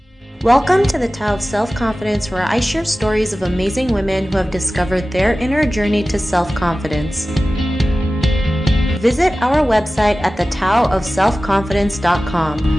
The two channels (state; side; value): normal; both; correlation 0.96